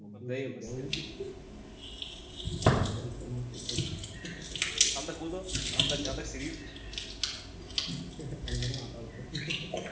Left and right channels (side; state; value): both; identical; correlation 1.00